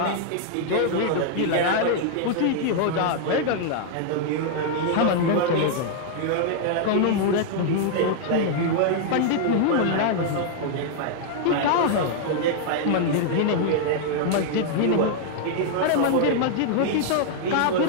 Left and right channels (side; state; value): both; different; correlation -0.01